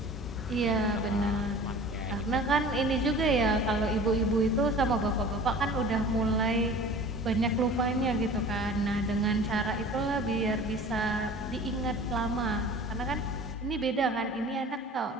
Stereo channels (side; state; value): both; normal; correlation 0.42